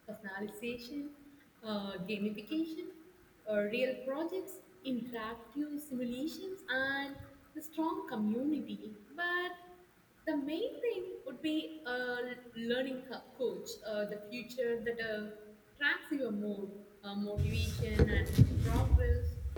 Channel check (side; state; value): both; identical; correlation 1.00